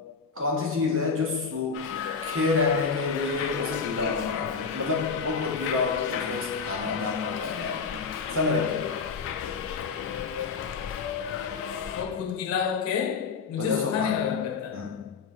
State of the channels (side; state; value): right; quieter; 5.2 dB